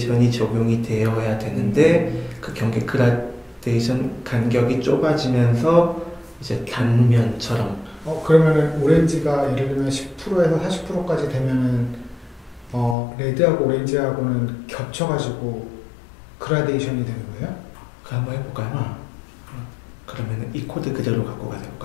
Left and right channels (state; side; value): drops out; right; at 13.0 s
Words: 적용이 되어야 되는데 그 경계 그라데이션 간격이 좁아지면서 이제 단면처럼. 그러면은 오렌지가 예를 들면 10%에서 40%까지 되면은 레드하고 오렌지하고는 겹쳐가지고 그라데이션이 되는 거예요? 그거 한번 해볼까요? 그러면 이 코드 그대로 갖고 가서